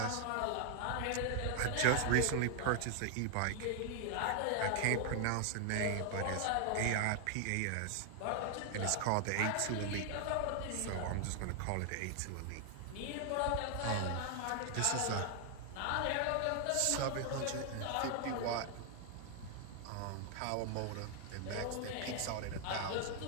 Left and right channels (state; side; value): different; both; correlation 0.00